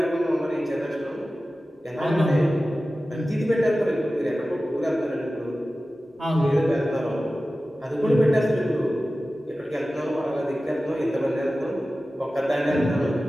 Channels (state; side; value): normal; both; correlation 0.95